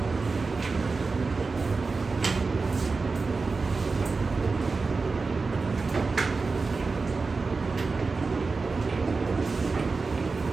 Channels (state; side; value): quieter; left; 4.2 dB